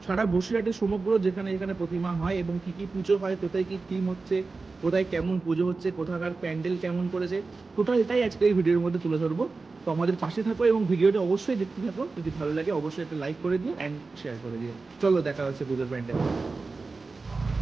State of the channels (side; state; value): left; quieter; 4.0 dB